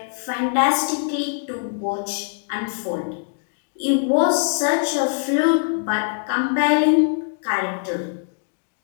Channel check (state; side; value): silent; right; digital silence